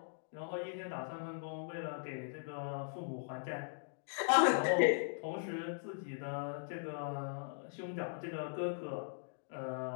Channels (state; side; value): silent; right; digital silence